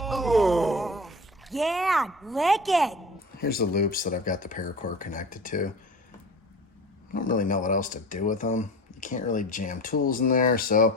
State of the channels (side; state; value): both; normal; correlation 0.35